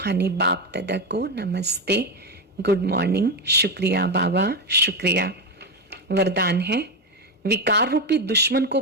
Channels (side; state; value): both; normal; correlation 0.11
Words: बाप दादा को नमस्ते, गुड मॉर्निंग, शुक्रिया बाबा, शुक्रिया। वरदान है, विकार रूपी दुश्मन को